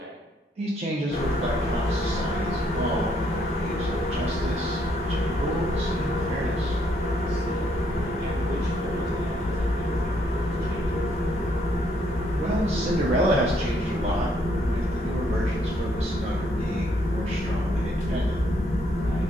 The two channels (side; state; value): both; normal; correlation 0.71